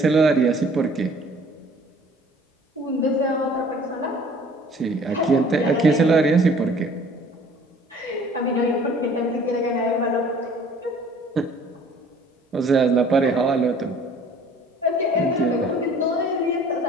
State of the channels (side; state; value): both; normal; correlation 0.52